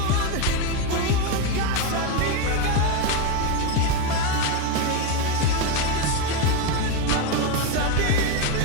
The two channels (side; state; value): both; different; correlation 0.04